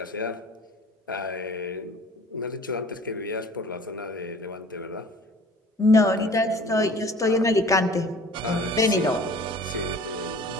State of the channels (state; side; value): normal; both; correlation 0.47